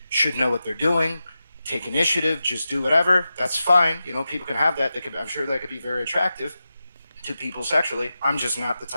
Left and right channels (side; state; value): both; inverted; correlation -0.91